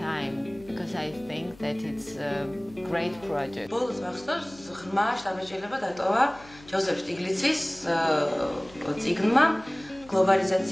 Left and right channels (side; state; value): left; noise; hum, 22 dB below the sound